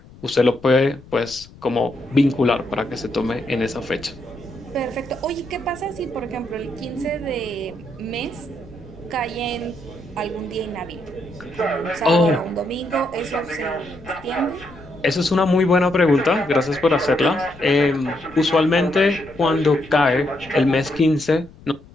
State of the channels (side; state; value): left; noise; rumble, 21 dB below the sound